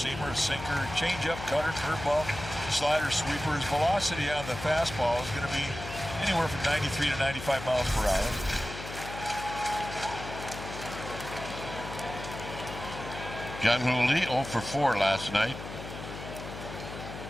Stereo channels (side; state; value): left; noise; hum, 10 dB below the sound